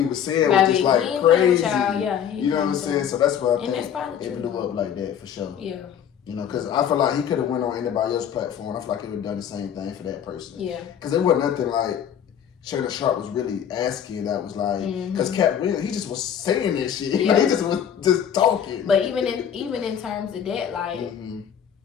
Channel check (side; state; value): right; quieter; 8.9 dB